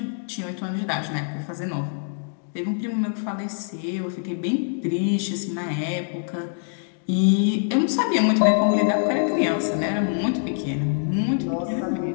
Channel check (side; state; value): right; silent; digital silence